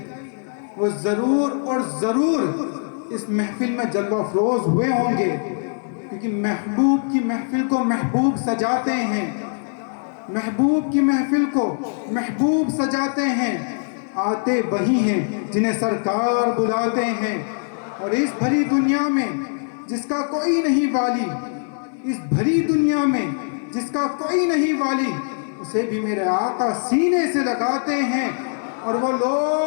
وہ ضرور اور ضرور اس محفل میں جلوہ افروز ہوئے ہوں گے، کیونکہ محبوب کی محفل کو محبوب سجاتے ہیں، محبوب کی محفل کو محبوب سجاتے ہیں، آتے وہی ہیں جنہیں سرکار بلاتے ہیں۔ اور اس بھری دنیا میں جس کا کوئی نہیں والی، اس بھری دنیا میں جس کا کوئی نہیں والی، اسے بھی میرے آقا سینے سے لگاتے ہیں، اور وہ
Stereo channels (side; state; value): right; silent; 59 dB below the other